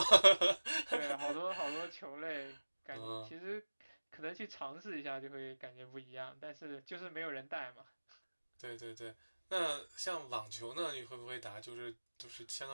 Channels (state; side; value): inverted; both; correlation -1.00